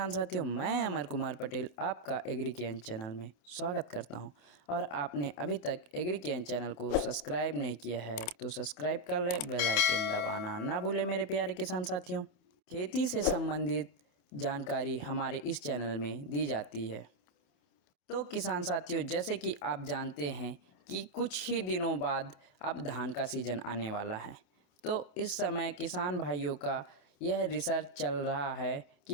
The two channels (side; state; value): right; late; 28 ms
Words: साथियों, मैं अमर कुमार पटेल आपका एग्रीकेन चैनल में स्वागत करता हूं। और आपने अभी तक एग्रीकेन चैनल को सब्सक्राइब नहीं किया है तो सब्सक्राइब कर ले, बेल आइकन दबाना ना भूले मेरे प्यारे किसान साथियों। खेती से संबंधित जानकारी हमारे इस चैनल में दी जाती है। तो किसान साथियों, जैसे कि आप जानते हैं कि कुछ ही दिनों बाद अब धान का सीज़न आने वाला है। तो इस समय किसान भाइयों का यह रिसर्च चल रहा है